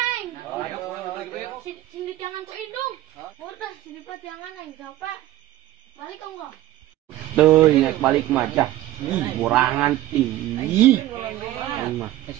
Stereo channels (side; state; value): left; quieter; 14.6 dB